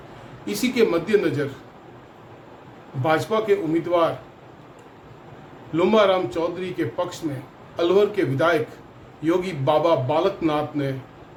इसी के मद्देनज़र भाजपा के उम्मीदवार लुम्बाराम चौधरी के पक्ष में अलवर के विधायक योगी बाबा बालकनाथ ने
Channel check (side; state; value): both; identical; correlation 1.00